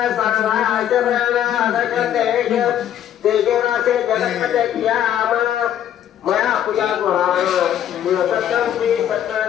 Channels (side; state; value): right; quieter; 10.5 dB